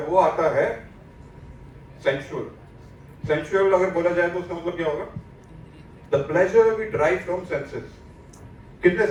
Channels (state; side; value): identical; both; correlation 1.00